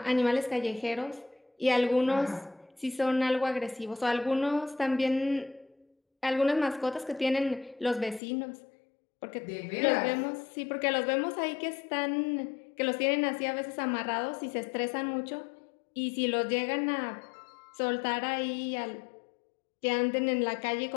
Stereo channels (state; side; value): drops out; right; at 8.2 s